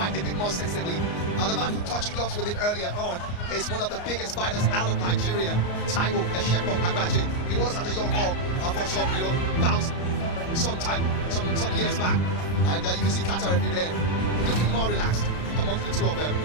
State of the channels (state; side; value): late; right; 34 ms